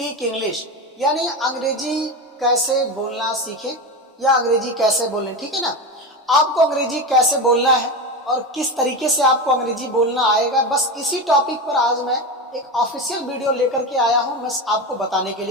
इंग्लिश, यानी अंग्रेजी कैसे बोलना सीखें या अंग्रेजी कैसे बोलें। ठीक है ना, आपको अंग्रेजी कैसे बोलना है और किस तरीके से आपको अंग्रेजी बोलना आएगा, बस इसी टॉपिक पर आज मैं एक ऑफिशियल वीडियो लेकर के आया हूं मैं आपको बताने के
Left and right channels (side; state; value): both; normal; correlation 0.20